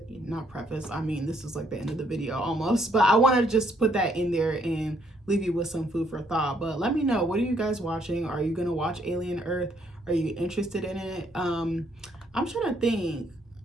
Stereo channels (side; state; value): both; normal; correlation 0.69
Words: not preface, I mean, this is like the end of the video almost, but I want to just put that in there and leave you with some food for thought. But let me know, what are you guys watching? Are you gonna watch Alien Earth? Are you interested in it? I'm trying to think,